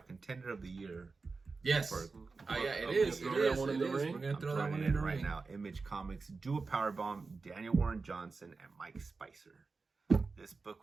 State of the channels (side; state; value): left; quieter; 4.2 dB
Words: of the year. Yes. For- Yeah, it of is. the It throw year. that is. one in It the is. ring? We're gonna I'm throw that throwing one it in the right ring. now. Image Comics, do a power bomb, Daniel Warren Johnson and Mike Spicer. This book